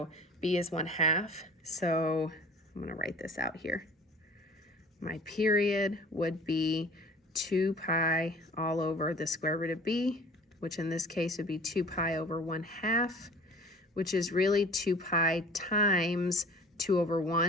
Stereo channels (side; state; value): both; normal; correlation 0.46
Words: b is 1/2. So I'm going to write this out here. My period would be 2 pi all over the square root of b, which in this case would be 2 pi over 1/2, which is really 2 pi times 2 over